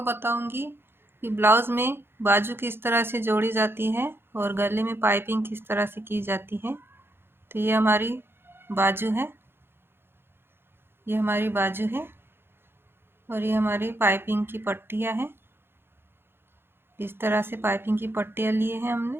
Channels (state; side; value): late; left; 0.11 ms